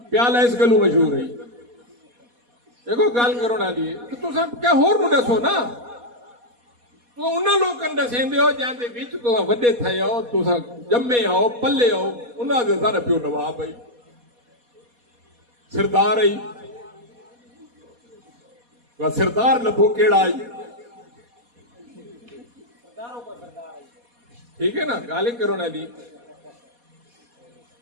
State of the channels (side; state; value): left; late; 4.2 ms